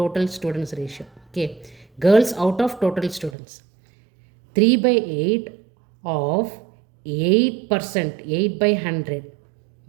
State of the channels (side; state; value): left; drops out; at 3.4 s